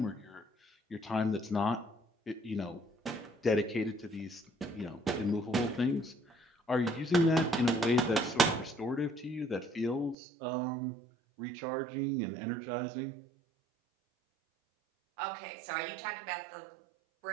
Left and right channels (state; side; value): drops out; left; at 10.2 s